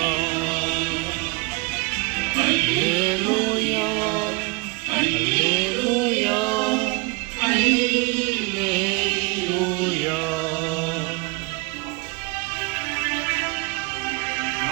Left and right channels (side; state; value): left; quieter; 27.1 dB